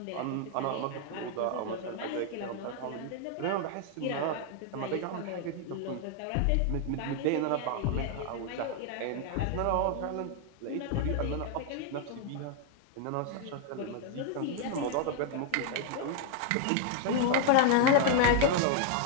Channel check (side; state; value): both; different; correlation 0.00